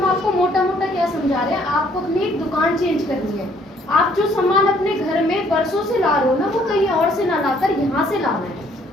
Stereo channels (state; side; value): normal; both; correlation 0.63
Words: आपको मोटा मोटा क्या समझा रहे हैं, आपको अपनी एक दुकान चेंज करनी है। आप जो सामान अपने घर में बरसों से ला रहे हो ना, वो कहीं और से ना लाकर यहाँ से लाना है